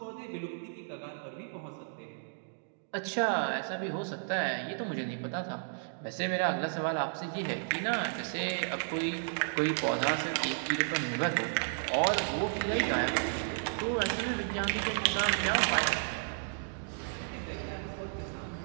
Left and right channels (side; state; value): left; silent; digital silence